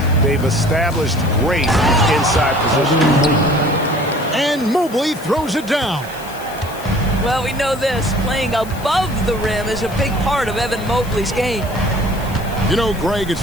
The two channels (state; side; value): noise; left; hiss, 18 dB below the sound